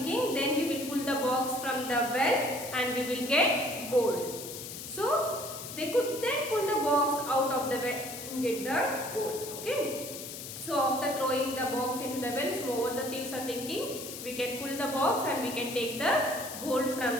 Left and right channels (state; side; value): noise; left; hiss, 9 dB below the sound